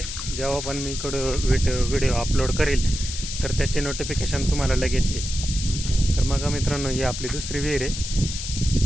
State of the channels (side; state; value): left; noise; hiss, 6 dB below the sound